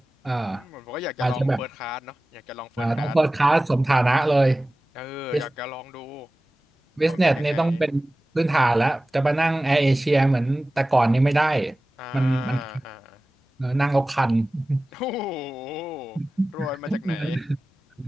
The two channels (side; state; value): both; normal; correlation 0.96